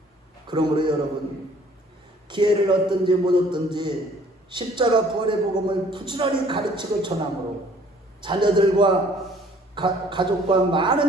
그러므로 여러분 기회를 얻든지 못 얻든지 십자가 부활의 복음을 부지런히 가르치고 전함으로 자녀들과 가족과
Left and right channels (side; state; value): both; normal; correlation 0.57